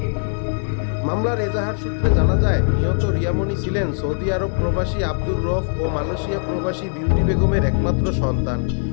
মামলার এজাহার সূত্রে জানা যায়, নিহত রিয়ামণি ছিলেন সৌদি আরব প্রবাসী আব্দুর রফ ও মালয়েশিয়া প্রবাসী বিউটি বেগমের একমাত্র সন্তান।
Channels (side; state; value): right; silent; digital silence